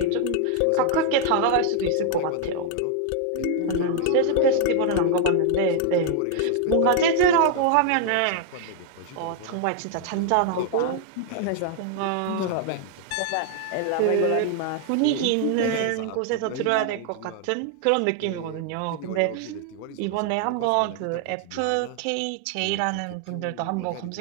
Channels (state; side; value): different; both; correlation 0.00